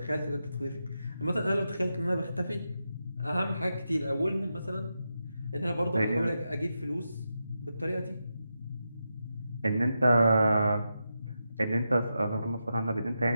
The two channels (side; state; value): both; inverted; correlation -0.87